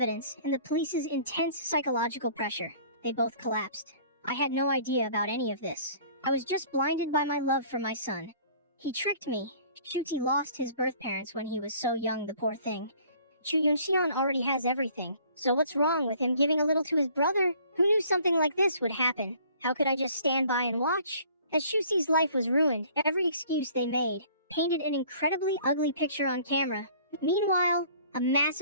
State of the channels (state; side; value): inverted; both; correlation -0.53